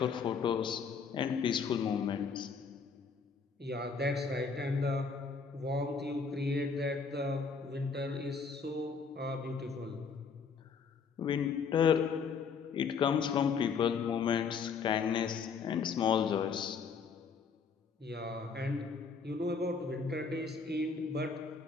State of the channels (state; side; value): quieter; right; 5.5 dB